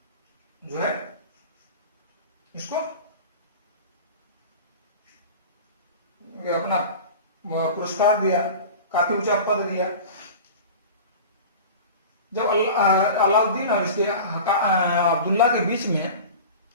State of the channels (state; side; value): inverted; both; correlation -0.35